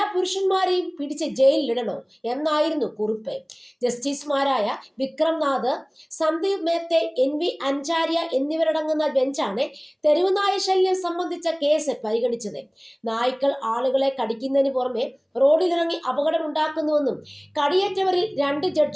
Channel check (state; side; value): identical; both; correlation 1.00